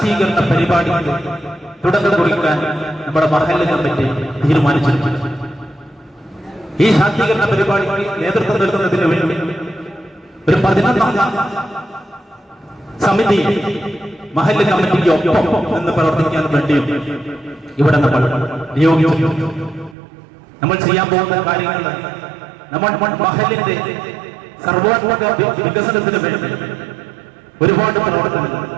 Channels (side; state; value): left; drops out; at 20.0 s